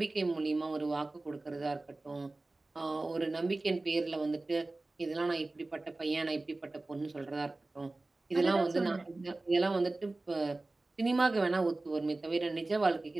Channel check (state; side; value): quieter; left; 3.1 dB